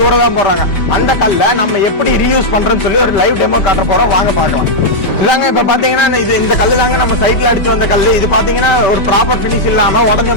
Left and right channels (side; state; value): right; late; 5.1 ms